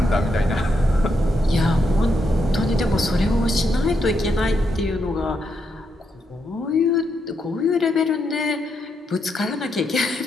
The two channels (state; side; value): normal; both; correlation 0.80